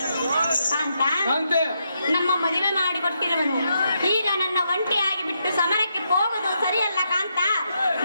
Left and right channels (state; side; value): inverted; both; correlation -0.80